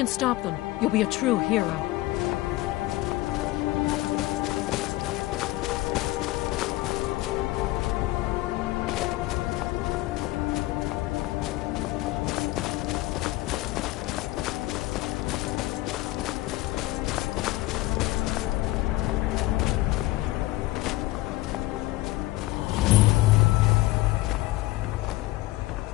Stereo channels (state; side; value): quieter; right; 18.3 dB